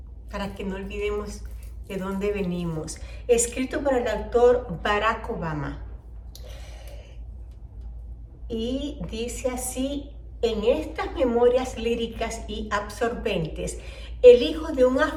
para que no olvidemos de dónde venimos. Escrito por el autor Barack Obama. Y dice así: en estas memorias líricas y absorbentes, el hijo de un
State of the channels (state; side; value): identical; both; correlation 1.00